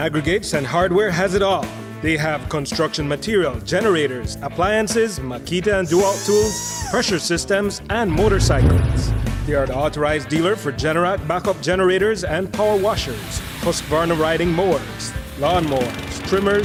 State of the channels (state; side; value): identical; both; correlation 1.00